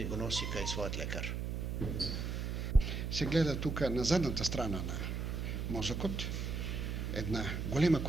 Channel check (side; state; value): right; noise; hum, 2 dB below the sound